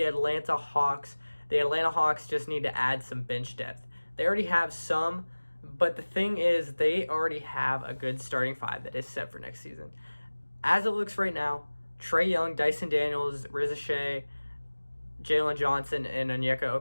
Atlanta Hawks. The Atlanta Hawks just need to add some bench depth. They already have some, but the thing is they already have a good starting five that is set for next season. As it looks right now, Trae Young, Dyson Daniels, Riza Shea, Jalen Johnson, and Onyeka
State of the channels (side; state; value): both; inverted; correlation -1.00